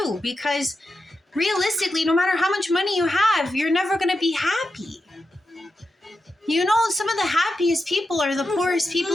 because realistically, no matter how much money you have, you're never going to be happy. Some of the happiest people are the poorest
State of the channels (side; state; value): both; normal; correlation 0.88